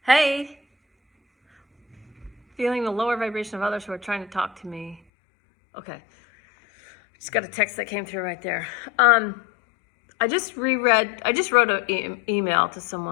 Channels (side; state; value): right; drops out; at 5.0 s